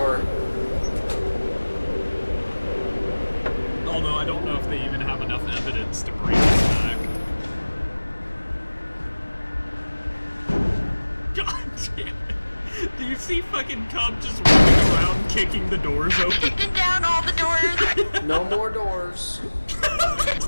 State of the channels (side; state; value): both; inverted; correlation -1.00